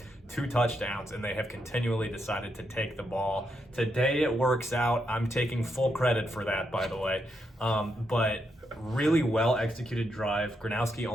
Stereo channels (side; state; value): both; normal; correlation 0.81